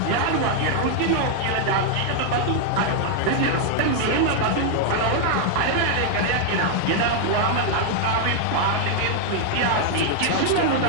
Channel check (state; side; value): different; both; correlation 0.00